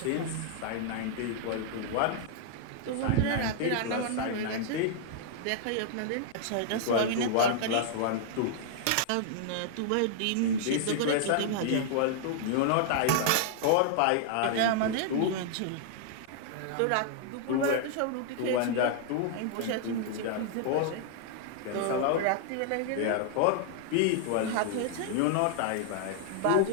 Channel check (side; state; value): both; different; correlation -0.01